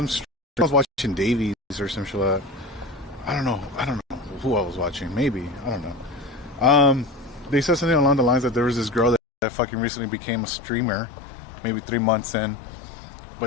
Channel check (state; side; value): drops out; right; at 9.2 s